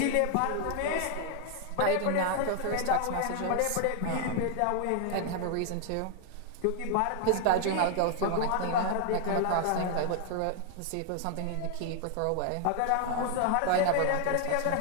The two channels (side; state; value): both; different; correlation 0.00